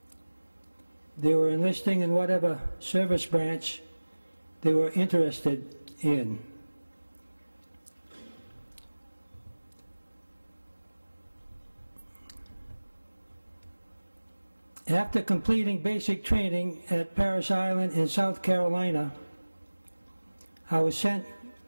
They were enlisting in whatever service branch they were interested in. After completing basic training at Parris Island in South Carolina, I was sent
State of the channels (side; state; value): both; inverted; correlation -1.00